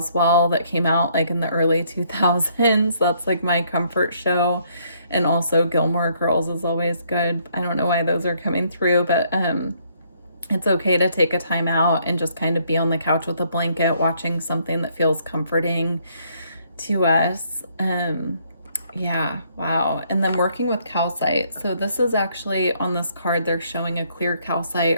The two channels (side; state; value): both; inverted; correlation -0.68